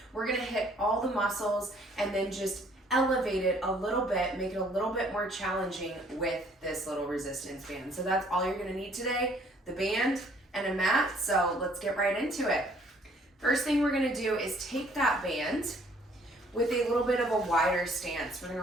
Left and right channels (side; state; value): both; normal; correlation 0.61